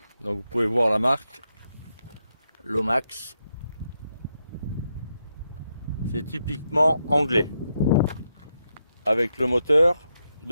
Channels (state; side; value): inverted; both; correlation -0.83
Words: Donc vous pouvez voir la marque Lomax. C'est typiquement anglais. Avec le moteur